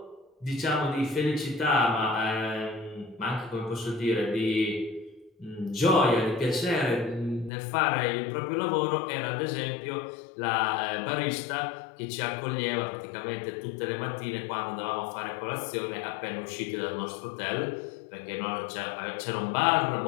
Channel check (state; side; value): drops out; right; at 7.5 s